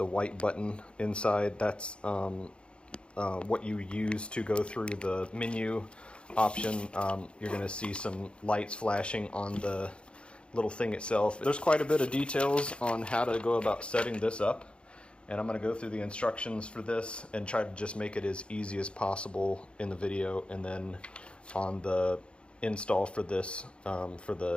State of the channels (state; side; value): late; right; 0.057 ms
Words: white button inside. That's what you use to go through the menu option. You're going to see some lights flashing on the little thing itself. There's quite a bit of details on how to go about setting this up, and I'm going to go through the instructions for this and try to just make it as easy as possible in the video. And then on the install for this, for